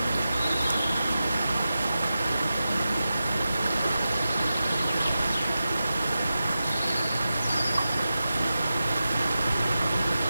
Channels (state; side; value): inverted; both; correlation -0.92